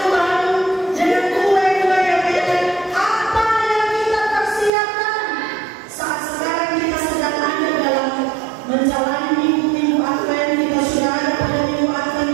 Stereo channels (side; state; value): left; drops out; at 4.7 s